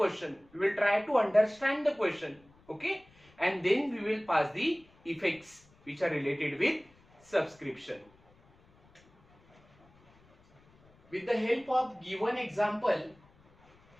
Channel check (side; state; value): left; noise; rumble, 30 dB below the sound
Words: we will try to understand the question. Okay, and then we will pass the effects which are related with subscription. With the help of given example,